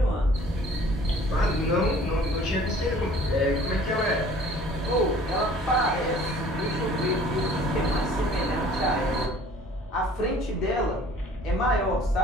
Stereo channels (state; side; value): normal; both; correlation 0.52